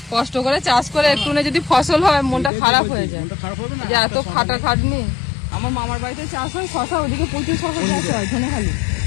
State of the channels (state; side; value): drops out; right; at 2.5 s